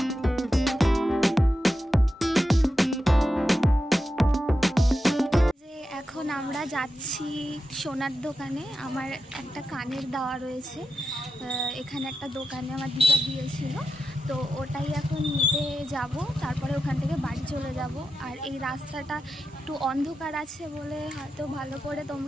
এখন আমরা যাচ্ছি সোনার দোকানে। আমার একটা কানের দেওয়া রয়েছে এখানে একটা দোকানে, আমার দিদা দিয়েছিল, তো ওটাই এখন নিতে যাব। তারপরে ওখান থেকে বাড়ি চলে যাব। আর এই রাস্তাটা একটু অন্ধকার আছে বলে হয়তো ভালো করে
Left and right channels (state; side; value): normal; both; correlation 0.90